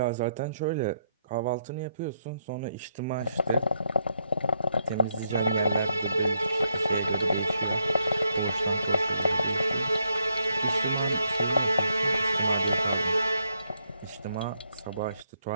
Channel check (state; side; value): inverted; both; correlation -0.77